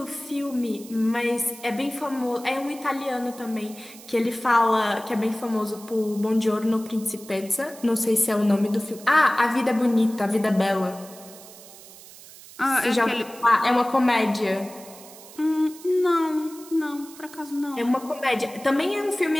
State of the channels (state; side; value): noise; right; hiss, 19 dB below the sound